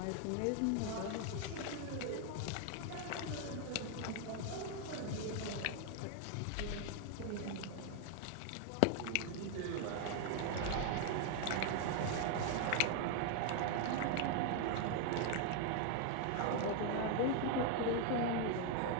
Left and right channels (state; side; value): different; both; correlation 0.00